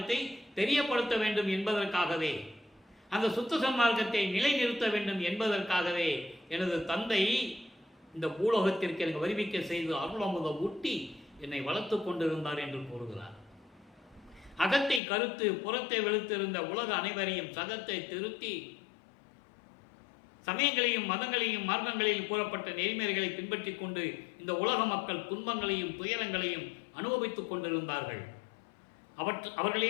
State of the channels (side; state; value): right; drops out; at 15.0 s